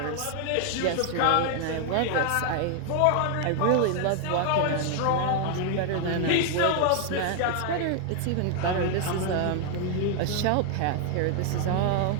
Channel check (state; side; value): different; both; correlation 0.00